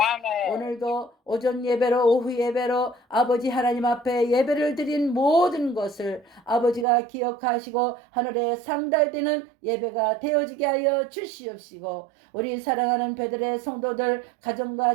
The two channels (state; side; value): drops out; left; at 6.9 s